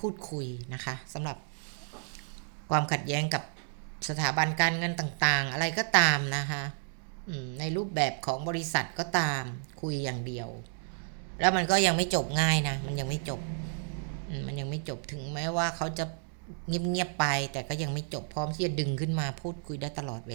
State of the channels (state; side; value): silent; left; 56 dB below the other